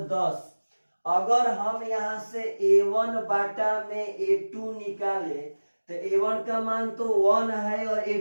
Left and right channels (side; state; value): both; inverted; correlation -1.00